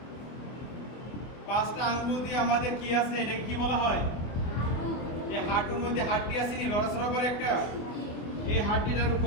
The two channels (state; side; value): late; right; 24 ms